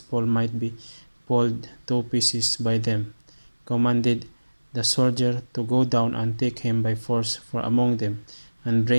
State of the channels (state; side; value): inverted; both; correlation -1.00